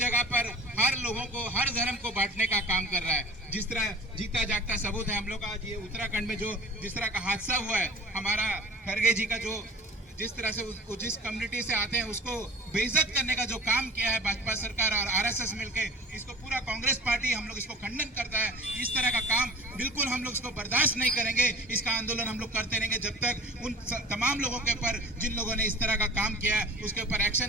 पर हर लोगों को, हर धर्म को बांटने का काम कर रहा है। जिस तरह जीता जागता सबूत है हम लोग का, ये उत्तराखंड में जो जिस तरह का हादसा हुआ है, हमारा खरगे जी का जो जिस तरह से जिस कम्युनिटी से आते हैं उसको बेइज्जत करने का जो काम किया है भाजपा सरकार और आरएसएस मिलके, इसको पूरा कांग्रेस पार्टी हम लोग इसको खंडन करता है। इस तरह का काम बिल्कुल हम लोग इसको बर्दाश्त नहीं करेंगे। इसका आंदोलन हम लोग करते रहेंगे जब तक उन तमाम लोगों के ऊपर, जिन लोगों ने इस तरह का काम किया है, उसके ऊपर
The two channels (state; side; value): normal; both; correlation 0.41